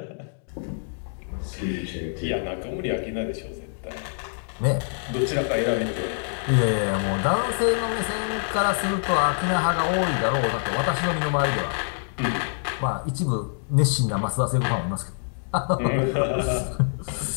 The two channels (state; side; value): silent; right; digital silence